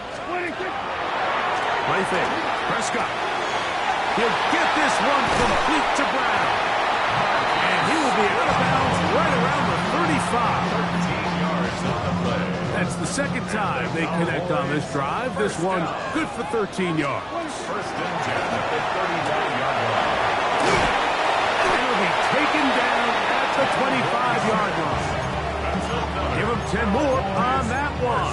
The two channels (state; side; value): identical; both; correlation 1.00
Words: splitting. Play fake. Prescott. He'll get this one complete to Brown. And he will be out of bounds right around the 35. 13 yards on the play. That's the second time they connect on this drive. This one good for 13 yards. First and 10 at the 39-yard line. And he'll be taken down at the 25-yard line. Give him 10 more on that